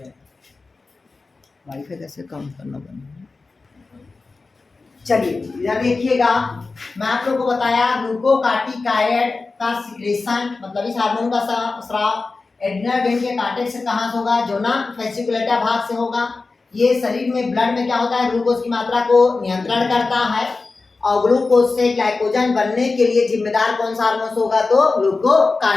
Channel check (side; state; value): right; quieter; 3.9 dB